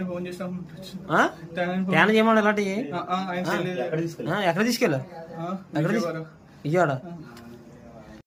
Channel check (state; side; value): identical; both; correlation 1.00